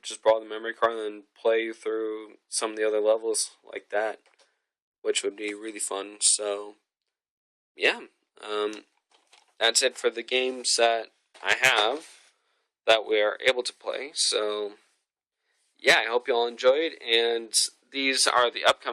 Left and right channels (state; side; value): identical; both; correlation 1.00